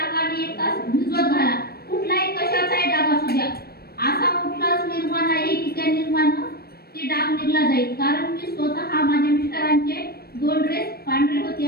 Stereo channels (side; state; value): right; late; 0.45 ms